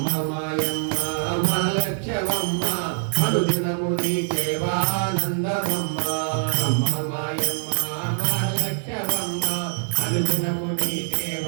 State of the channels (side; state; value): left; silent; 63 dB below the other